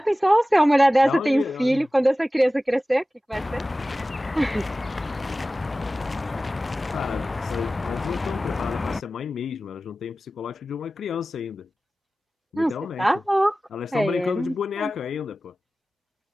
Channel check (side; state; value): both; normal; correlation 0.96